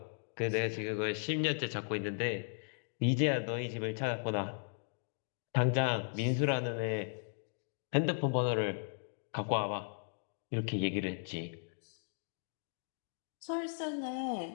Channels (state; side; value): silent; right; digital silence